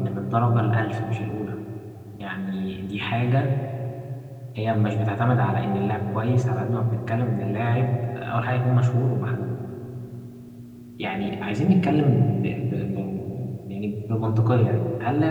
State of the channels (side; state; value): both; identical; correlation 1.00